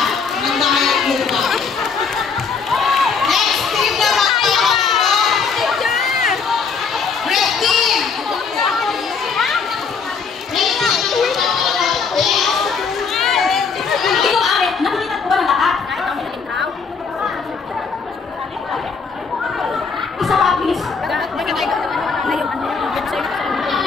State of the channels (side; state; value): right; quieter; 5.5 dB